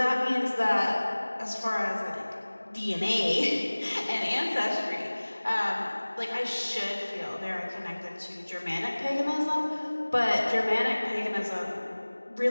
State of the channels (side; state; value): both; inverted; correlation -1.00